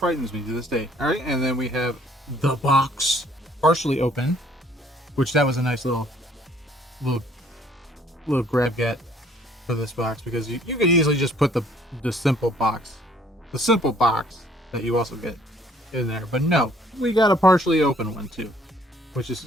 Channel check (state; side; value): normal; both; correlation 0.60